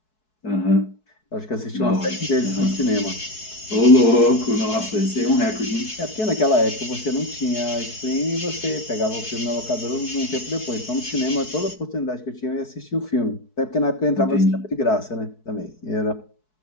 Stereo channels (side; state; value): right; late; 4.7 ms